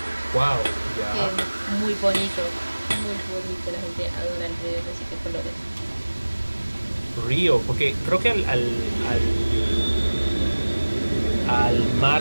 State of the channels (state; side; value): inverted; both; correlation -1.00